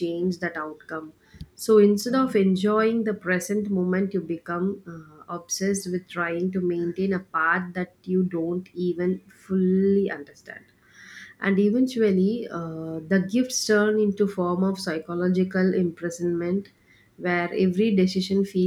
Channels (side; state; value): both; identical; correlation 1.00